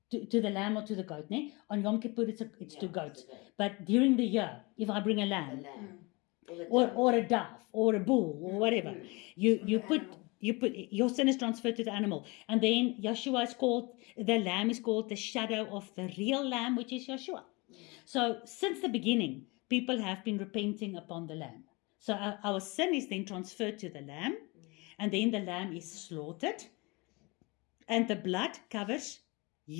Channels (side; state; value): right; quieter; 26.4 dB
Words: To the lamb or to the goat, ne? On Yom Kippur, it's to It's goat. the goat. But during the year, if I bring a The lamb, lamb. Or the or dove. a dove, or a bull, or whatever, you put your sin is transferred to the animal, and then Yeshua is called, the lamb is called the shadow of the real lamb, which is Yeshua. So since the beginning, people have been repenting upon the lamb. So our sin is then transferred to the lamb, and then the lamb is slaughtered, and the blood covers